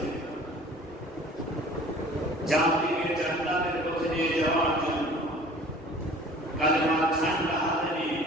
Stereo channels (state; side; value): normal; both; correlation 0.47